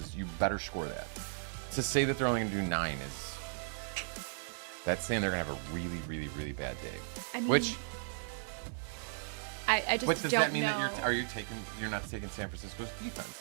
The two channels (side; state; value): left; silent; digital silence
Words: you better score that. To say that they're only going to do 9 is that's saying they're going to have a really, really, really bad day. I mean, which I just what does don't that mean know. that you're not taking San Francisco's defense